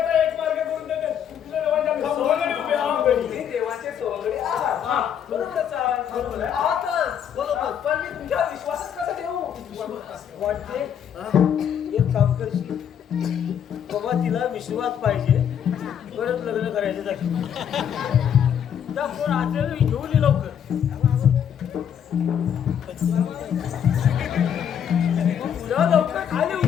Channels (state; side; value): quieter; right; 8.8 dB